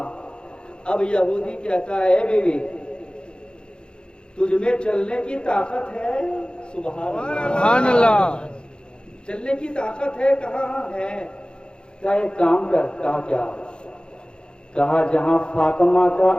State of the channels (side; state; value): right; late; 0.051 ms